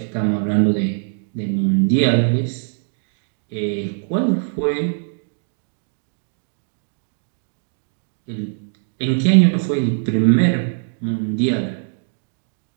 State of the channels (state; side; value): silent; left; digital silence